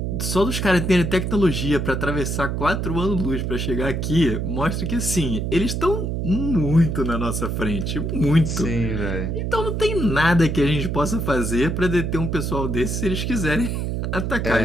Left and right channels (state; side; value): noise; right; hum, 1 dB below the sound